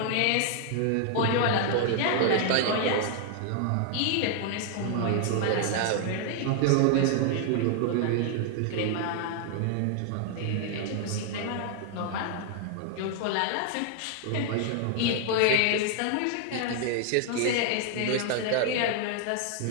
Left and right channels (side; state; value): both; different; correlation 0.00